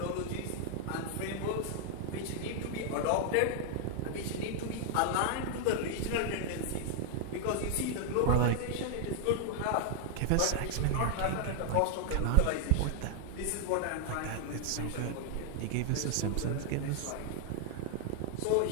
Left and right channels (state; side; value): different; both; correlation 0.00